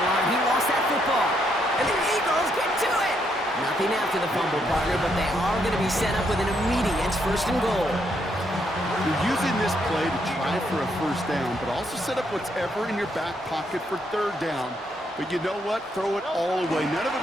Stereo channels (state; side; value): normal; both; correlation 0.75